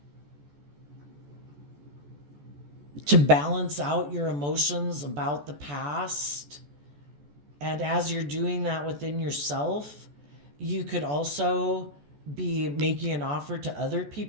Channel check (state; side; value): late; left; 14 ms